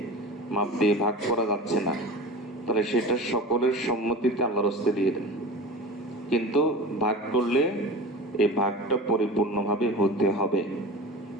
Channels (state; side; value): normal; both; correlation 0.33